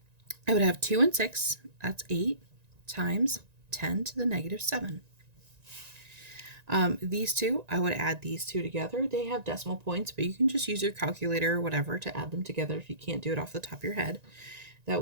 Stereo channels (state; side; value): late; left; 1.9 ms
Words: I would have 2 and 6, that's 8, times 10 to the negative 7. These two, I would add these two together. They have decimal points, but you can just use your calculator or whatever to add them together if you can't do it off the top of your head. That